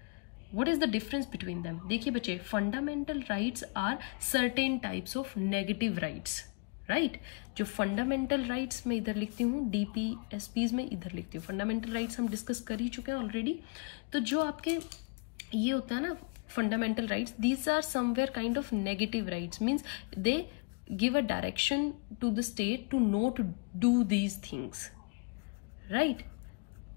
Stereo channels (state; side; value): quieter; right; 33.5 dB